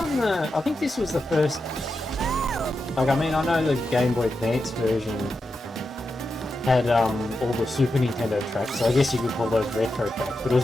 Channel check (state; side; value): normal; both; correlation 0.88